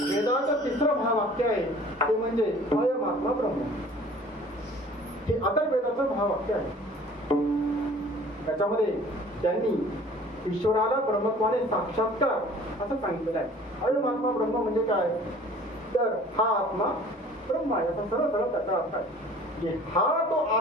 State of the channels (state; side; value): normal; both; correlation 0.49